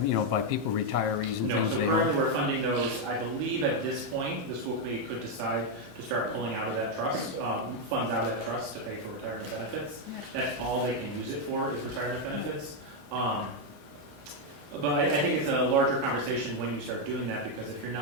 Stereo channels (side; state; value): left; late; 22 ms